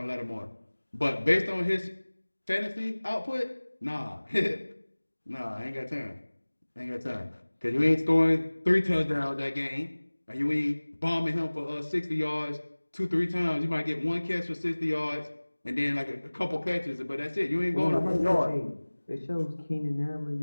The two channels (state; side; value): inverted; both; correlation -1.00